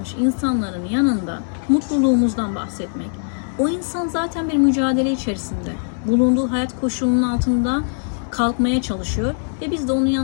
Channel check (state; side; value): silent; right; digital silence